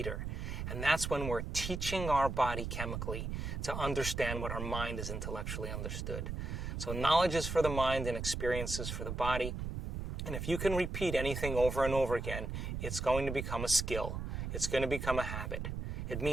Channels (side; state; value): right; noise; rumble, 4 dB below the sound